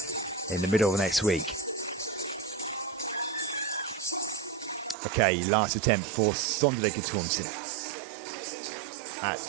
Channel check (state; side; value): drops out; left; at 5.0 s